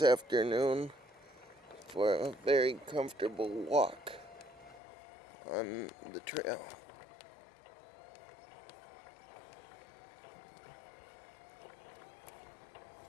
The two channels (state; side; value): drops out; right; at 4.8 s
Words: for a very comfortable walk on the trail.